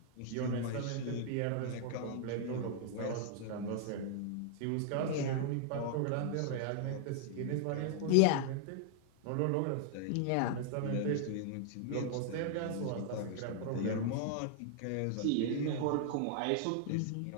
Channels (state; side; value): different; both; correlation 0.00